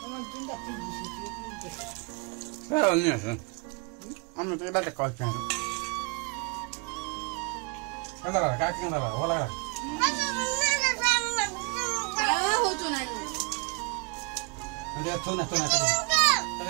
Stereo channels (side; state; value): left; quieter; 32.3 dB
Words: पुरा अन्य छ अन्य त एटा कल छ कता ला का किन ला होला हो तो नाही अन्य थोना थोना तक